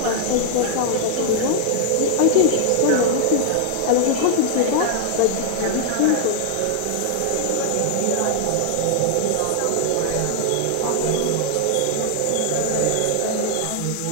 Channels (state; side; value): different; both; correlation 0.00